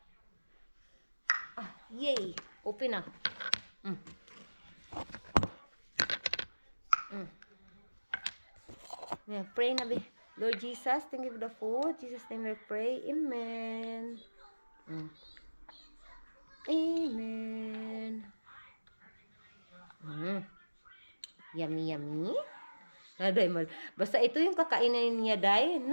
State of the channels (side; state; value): both; inverted; correlation -1.00